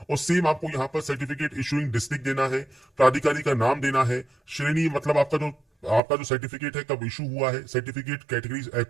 और सेम आपको यहाँ पर सर्टिफिकेट इशूइंग डिस्ट्रिक्ट देना है, प्राधिकारी का नाम देना है, श्रेणी मतलब आपका जो सर्टिफिकेट है कब इशू हुआ है, सर्टिफिकेट कैटेगरी,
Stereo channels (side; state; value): left; drops out; at 6.0 s